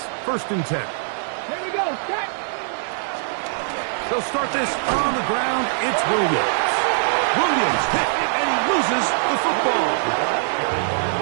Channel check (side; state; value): left; silent; digital silence